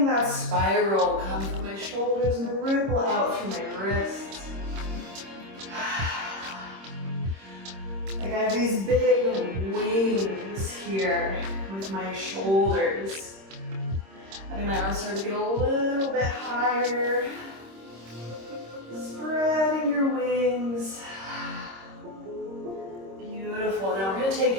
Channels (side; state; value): left; late; 26 ms